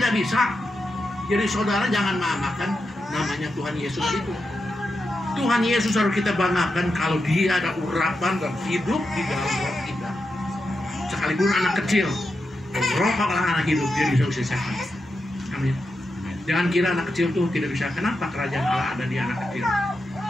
bisa. Jadi saudara jangan memakan namanya Tuhan Yesus itu. Tuhan Yesus harus kita banggakan kalau dia ada urapan dan hidup di dalam roh kita. Sekalipun anak kecil, roh kalau anak hidup dia bisa usir setan. Amin. Jangan kira anak kecil tuh tidak bisa. Kenapa kerajaan Allah ada di anak kecil?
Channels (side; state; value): both; normal; correlation 0.87